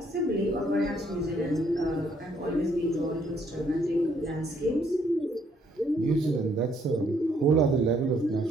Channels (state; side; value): normal; both; correlation 0.68